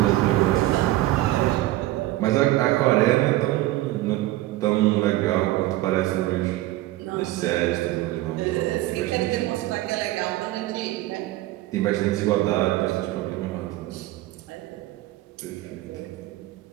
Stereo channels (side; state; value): left; quieter; 16.6 dB